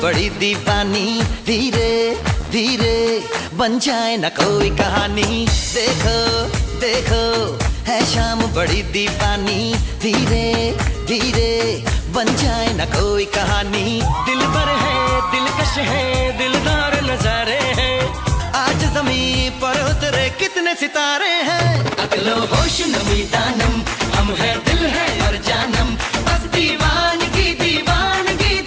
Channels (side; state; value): both; identical; correlation 1.00